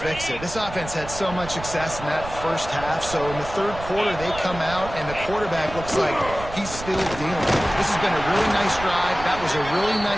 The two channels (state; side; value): noise; right; rumble, 12 dB below the sound